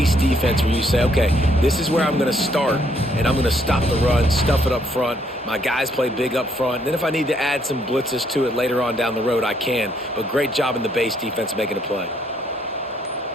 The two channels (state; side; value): normal; both; correlation 0.70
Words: defense where you say, okay, this is where I'm going to start, and I'm going to stop the run, stuff it up front. My guys play big up front. And then if I need to add some blitzes to it later on down the road, I can. But great job in the base defense making a play.